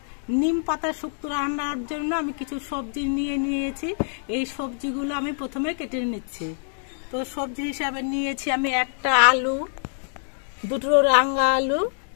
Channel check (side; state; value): right; silent; digital silence